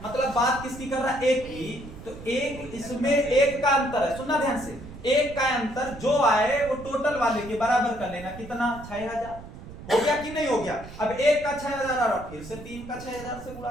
मतलब बात किसकी कर रहा है? 1 की, तो 1 इसमें 1 का अंतर है, सुनना ध्यान से, 1 का अंतर जो आए वो टोटल वाले के बराबर कर लेना, कितना? 6000 हो गया कि नहीं हो गया? अब 1 का 6000 आ रहा, फिर से 3 का 6000 से गुणा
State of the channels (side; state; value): right; noise; rumble, 14 dB below the sound